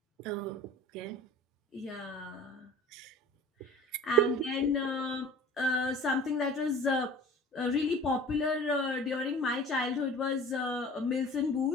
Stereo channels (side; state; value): both; normal; correlation 0.43